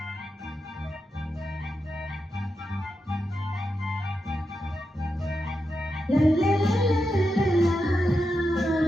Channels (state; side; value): normal; both; correlation 0.87